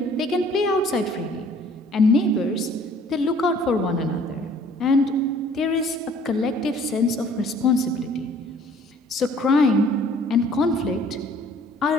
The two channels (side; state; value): both; normal; correlation 0.56